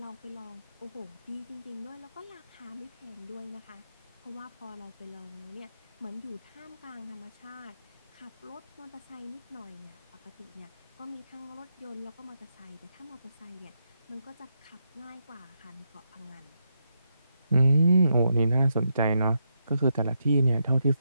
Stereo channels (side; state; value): both; inverted; correlation -0.82